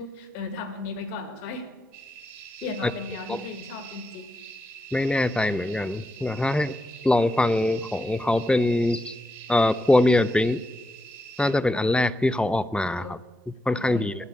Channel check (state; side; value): normal; both; correlation 0.86